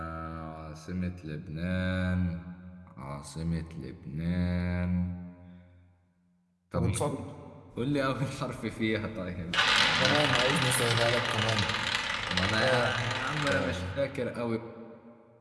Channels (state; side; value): identical; both; correlation 1.00